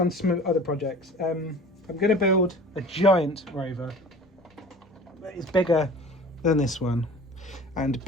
to some other projects. I'm going to build a giant rover that is bigger than this one, and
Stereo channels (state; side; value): normal; both; correlation 0.41